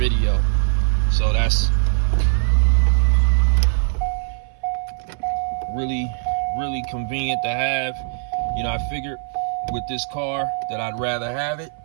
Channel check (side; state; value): left; silent; 59 dB below the other